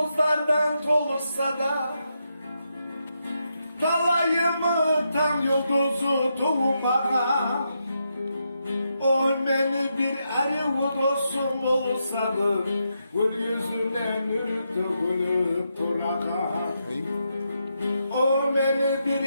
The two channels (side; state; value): both; inverted; correlation -0.82